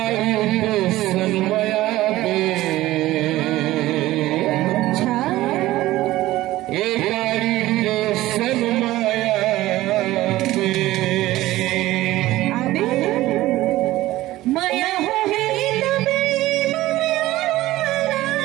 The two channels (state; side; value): quieter; left; 16.6 dB